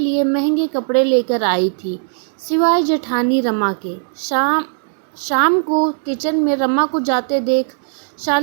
महंगे कपड़े लेकर आई थी, सिवाय जेठानी रमा के। शाम को किचन में रमा को जाते देख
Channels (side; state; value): left; silent; digital silence